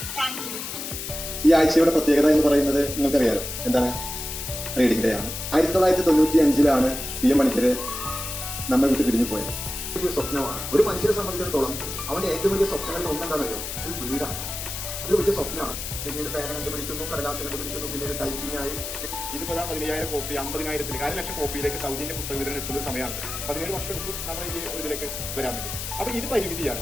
Thank you. ഈ ആഴ്ചയുടെ പ്രത്യേകത എന്ന് പറയുന്നത് നിങ്ങൾക്കറിയാലോ എന്താണ്? Reading day ആണ്. 1995 PM മണിക്കര് നമ്മെ വിട്ട് പിരിഞ്ഞു പോയത്. വലിയ സ്വപ്നമാണ് ഒരു മനുഷ്യനെ സംബന്ധിച്ചിടത്തോളം. അവന്റെ ഏറ്റവും വലിയ സ്വപ്നങ്ങളിൽ ഒന്നെന്താണെന്നറിയോ? ഒരു വീടാണ്. അത് വലിയ സ്വപ്നമാണ്. പിന്നീട് പേന കണ്ടുപിടിക്കുന്നു, കടലാസ് കണ്ടുപിടിക്കുന്നു, പിന്നീട് ടൈപ്പിംഗ് ആയി. ഇതിപ്പോ 15,000 കോപ്പി 50,000 1,00,000 കോപ്പിയിലേക്ക് സൗജന്യ പുസ്തക വിതരണം എത്തുന്ന സമയമാണ്. 17 വർഷം എടുത്തു നമ്മൾ ഈ ഒരു ഇതിലേക്ക് വരാൻ വേണ്ടി. അപ്പൊ ഇത് പരിമിതിയാണ്.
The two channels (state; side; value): noise; left; hiss, 6 dB below the sound